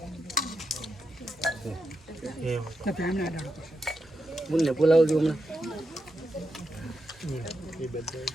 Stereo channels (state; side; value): normal; both; correlation 0.86